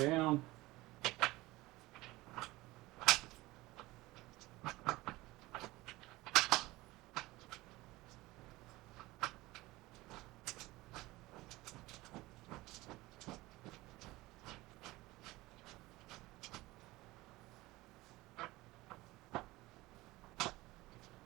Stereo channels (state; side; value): quieter; left; 19.7 dB